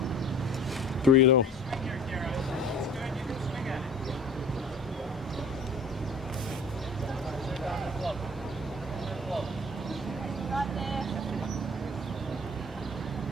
Three and 0.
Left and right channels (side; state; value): both; normal; correlation 0.46